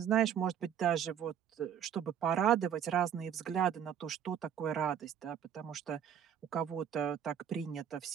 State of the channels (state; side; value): quieter; left; 9.1 dB